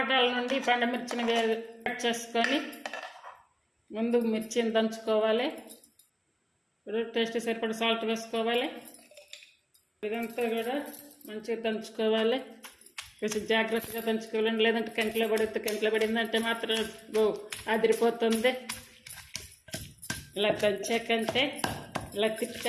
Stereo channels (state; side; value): identical; both; correlation 1.00